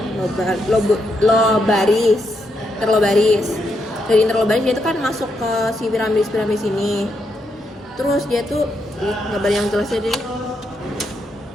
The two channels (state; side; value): normal; both; correlation 0.80